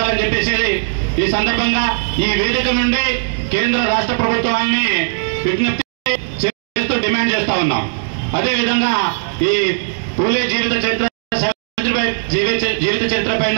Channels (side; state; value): left; silent; digital silence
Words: చెప్పేసి ఈ సందర్భంగా ఈ వేదిక నుండి కేంద్ర రాష్ట్ర ప్రభుత్వాన్ని విజ్ఞప్తి చేస్తూ డిమాండ్ చేస్తా ఉన్నాం. అదేవిధంగా ఈ పూలే జీవిత చరిత్ర